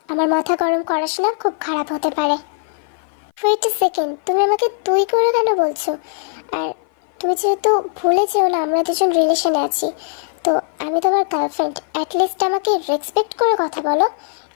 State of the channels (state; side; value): silent; right; 57 dB below the other